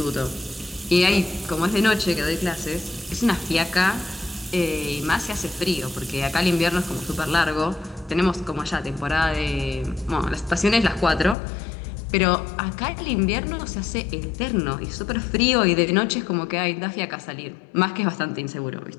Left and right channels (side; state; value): right; drops out; at 11.4 s